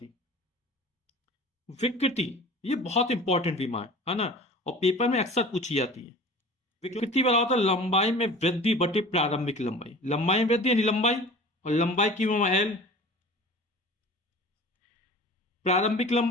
विकृति, ये बहुत इंपॉर्टेंट विमा है ना, और पेपर में अक्सर पूछी जाती है। विकृति बराबर होता है लंबाई में वृद्धि बटे प्रारंभिक लंबाई, लंबाई में वृद्धि यानी लंबाई, और लंबाई की विमा L, प्रारंभिक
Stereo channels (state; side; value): normal; both; correlation 0.41